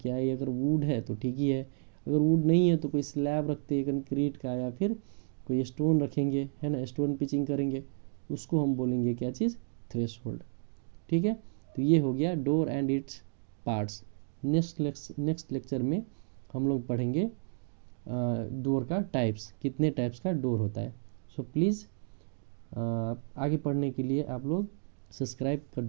है, अगर वुड है तो ठीक ही है, अगर वुड नहीं है तो कोई स्लैब रखते हैं कंक्रीट का, या फिर कोई स्टोन रखेंगे, है ना, स्टोन पिचिंग करेंगे, उसको हम बोलेंगे क्या चीज़, थ्रेशोल्ड, ठीक है। तो ये हो गया door and its parts. Next lecture में हम लोग पढ़ेंगे डोर का टाइप्स, कितने टाइप्स का डोर होता है। सो प्लीज़ आगे पढ़ने के लिए आप लोग सब्सक्राइब कर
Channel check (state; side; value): silent; left; digital silence